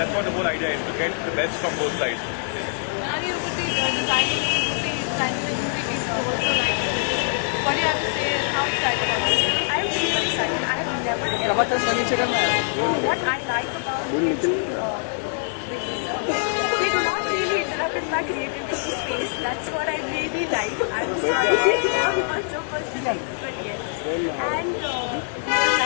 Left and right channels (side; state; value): right; silent; digital silence